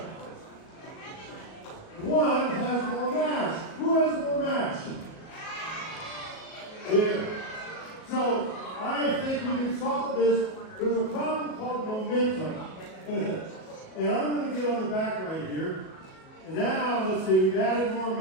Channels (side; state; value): right; late; 37 ms